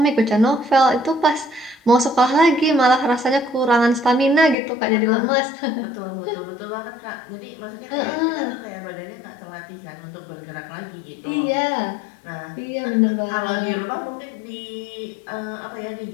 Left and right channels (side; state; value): right; drops out; at 4.5 s